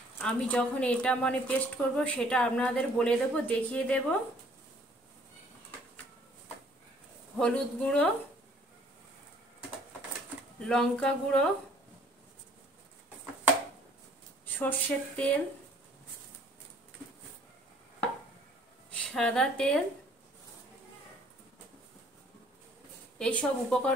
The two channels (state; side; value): normal; both; correlation 0.59